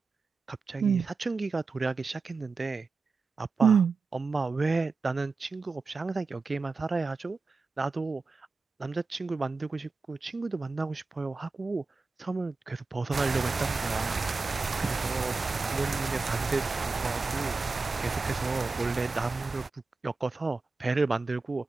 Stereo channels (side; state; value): left; quieter; 4.1 dB